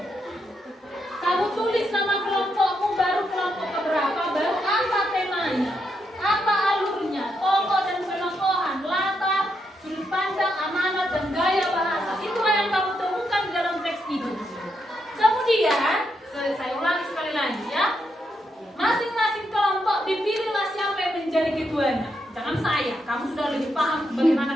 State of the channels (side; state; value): both; normal; correlation 0.81